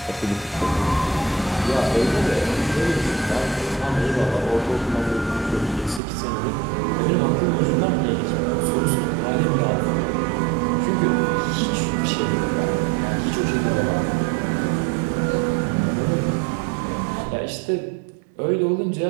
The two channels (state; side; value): drops out; left; at 6.0 s